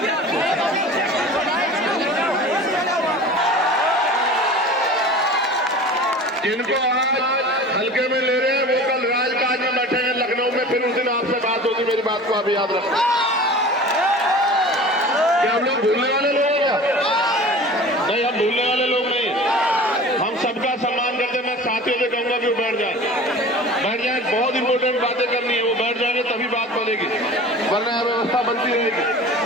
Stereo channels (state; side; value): normal; both; correlation 0.39